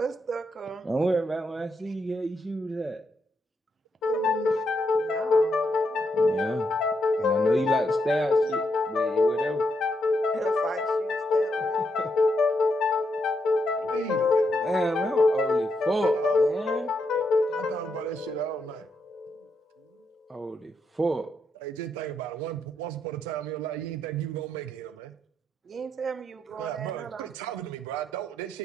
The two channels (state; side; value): normal; both; correlation 0.80